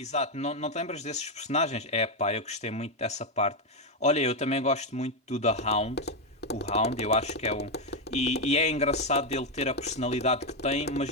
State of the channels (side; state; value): both; normal; correlation 0.04